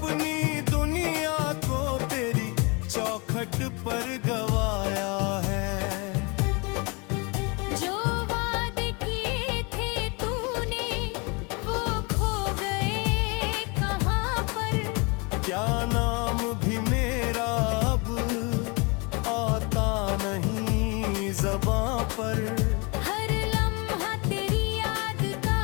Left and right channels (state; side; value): quieter; right; 29.9 dB